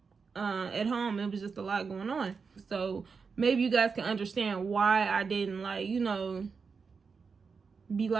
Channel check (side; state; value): left; quieter; 5.3 dB